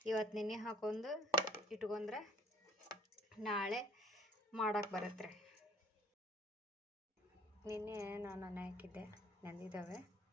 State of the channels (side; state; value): both; normal; correlation 0.56